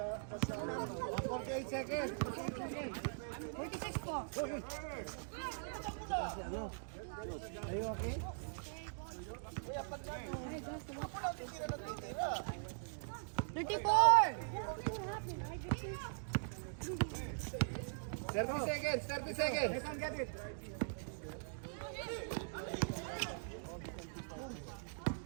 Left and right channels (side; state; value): left; silent; digital silence